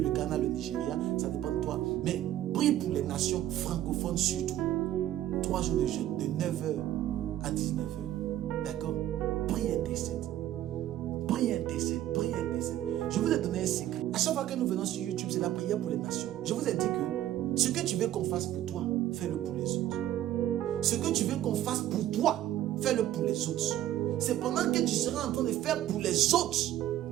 le Ghana, le Nigeria, ça dépend de toi. Mais prie pour les nations francophones surtout. 3 jours de jeûne, de 9h à 19h. D'accord? Prie intercède. Prie intercède, prie intercède. Je vous ai donné un secret. À chaque fois que nous venons sur YouTube, c'est la prière pour les nations. Je vous ai dit que ce que tu veux qu'on fasse pour toi, fais-le pour les autres. Ce que tu veux qu'on fasse pour toi, fais-le pour les autres. C'est pendant que tu seras en train de faire pour les autres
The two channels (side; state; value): left; quieter; 12.9 dB